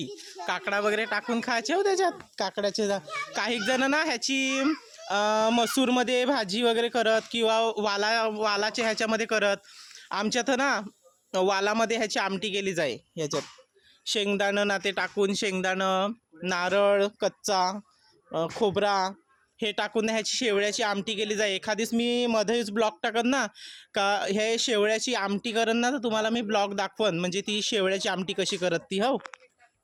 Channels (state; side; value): identical; both; correlation 1.00